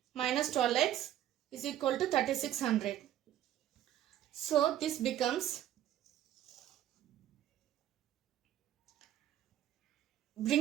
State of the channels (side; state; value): left; quieter; 12.0 dB